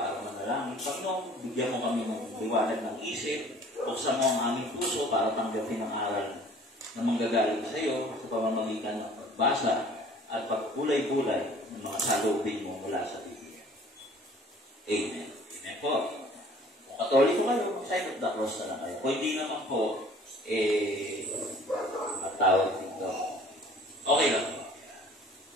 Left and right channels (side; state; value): both; normal; correlation 0.51